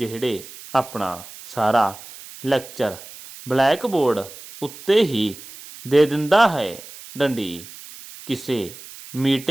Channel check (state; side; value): noise; right; hiss, 16 dB below the sound